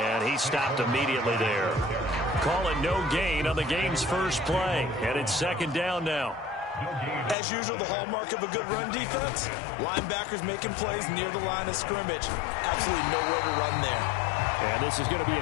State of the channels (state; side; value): drops out; right; at 7.4 s